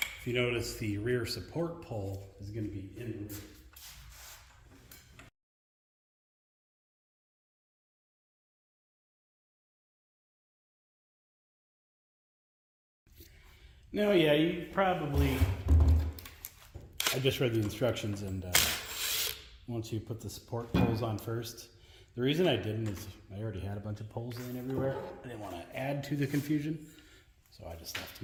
you notice, the rear support pole is going to be in the rear. Now, yeah, you probably, I just read the instructions, and once you put the support poles on first, The reason I didn't is I already had a bunch of poles laying everywhere. I didn't want to add to the confusion, so I just left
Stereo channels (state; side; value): identical; both; correlation 1.00